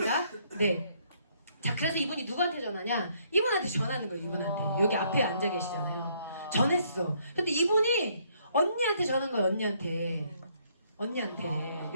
네. 자, 그래서 이분이 누구한테 전화냐? 이분한테 전화하는 거예요, 이분한테. 여기 앞에 앉아 계시잖아요. 전했어. 근데 이분이 언니한테 전한 거예요, 언니한테.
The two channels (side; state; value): both; inverted; correlation -0.68